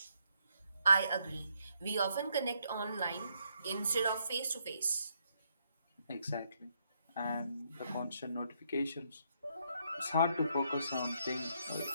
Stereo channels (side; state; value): both; inverted; correlation -0.74